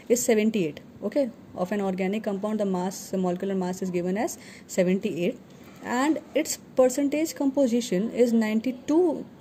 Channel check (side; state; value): both; identical; correlation 1.00